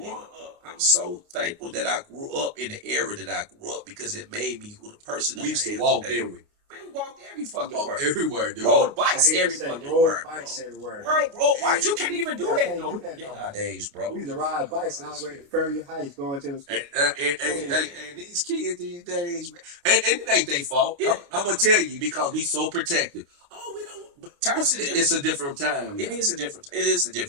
up. I'm so thankful that I grew up in the era that I grew up because it made me who the person that We used I to am walk, today. didn't we? Man, we walked every fucking Walk word. everywhere, dude. Rode bikes every Say fucking road word. bikes everywhere. Rode bikes. You can't even do Yeah, that can't no do that no more. nowadays, bro. We used to ride bikes all the way to Ferry Heights going to the school. And these kids these days, man, and it ain't their fault. Yeah. I'm gonna tell you because we so protective. Oh, we don't. But Times are different. it's a different time. It now. is a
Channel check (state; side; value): late; left; 29 ms